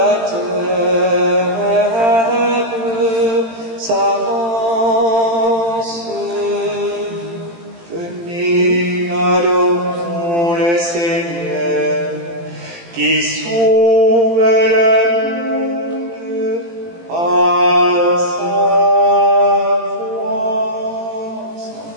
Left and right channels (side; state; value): left; late; 18 ms